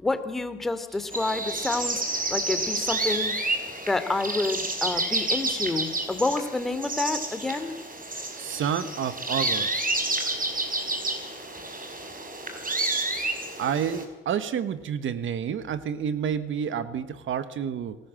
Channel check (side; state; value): both; normal; correlation 0.29